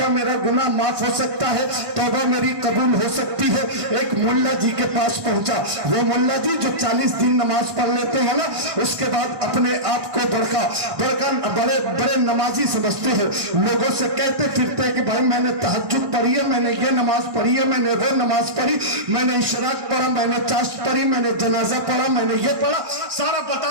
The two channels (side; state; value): left; late; 1.1 ms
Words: میرا گناہ معاف ہو سکتا ہے, توبہ میری قبول ہو سکتی ہے. ایک ملا جی کے پاس پہنچا. وہ ملا جی جو 40 دن نماز پڑھ لیتے ہیں نا, اس کے بعد اپنے آپ کو بڑے نمازی سمجھتے ہیں. لوگوں سے کہتے پھرتے کہ بھائی میں نے تہجد پڑھی ہے, میں نے یہ نماز پڑھی ہے, میں نے وہ نماز پڑھی, میں نے اشراق پڑھا, میں نے چاشت پڑھی, میں نے جنازہ پڑھا, میں نے یہ پڑھا, سارا